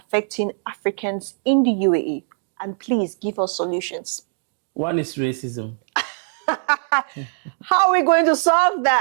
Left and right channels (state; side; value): silent; left; digital silence